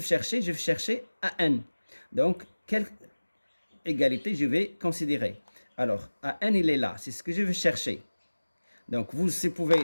chercher? Je vais chercher AN. Donc, quelle égalité je vais considérer? Alors, AN, il est là. C'est ce que je vais chercher. Donc, vous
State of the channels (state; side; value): inverted; both; correlation -1.00